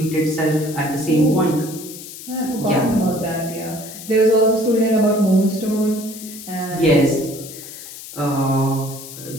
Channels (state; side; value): noise; left; hiss, 13 dB below the sound